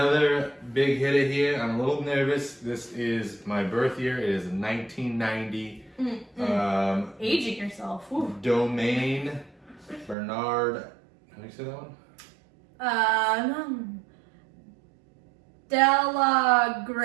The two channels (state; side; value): drops out; left; at 10.2 s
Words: big hitter here. I'm a little nervous. This is my birth year. It is 1990. Aging yourself. Woo. Domaine Bernard. How do you say that one?